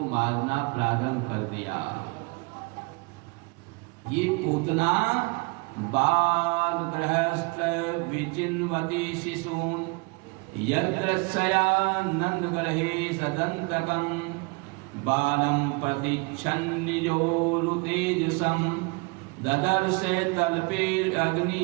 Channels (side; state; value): left; quieter; 29.6 dB